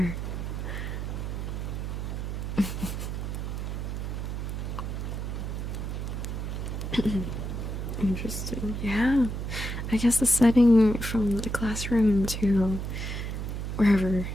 Interesting. Yeah. I guess the setting from the classroom to wherever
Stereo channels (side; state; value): right; noise; hum, 4 dB below the sound